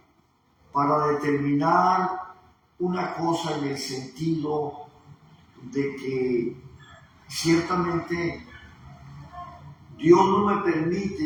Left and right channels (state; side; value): identical; both; correlation 1.00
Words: determinar una cosa en el sentido de que ciertamente Dios no me